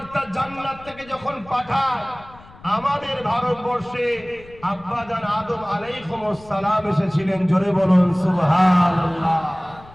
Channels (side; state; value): left; noise; rumble, 22 dB below the sound